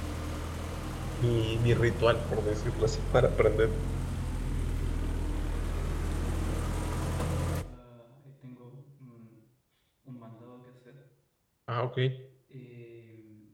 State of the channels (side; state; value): both; identical; correlation 1.00